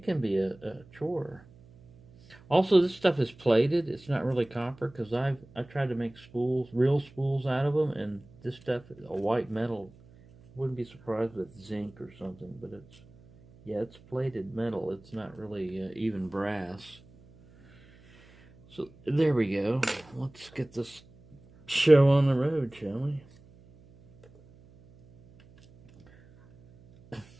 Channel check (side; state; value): right; noise; hum, 25 dB below the sound